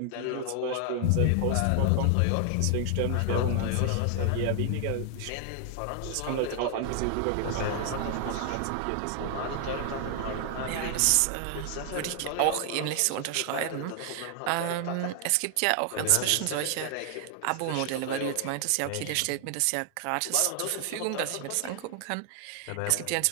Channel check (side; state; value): both; different; correlation 0.00